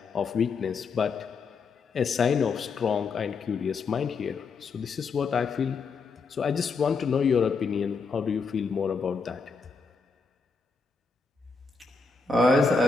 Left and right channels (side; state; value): right; quieter; 4.7 dB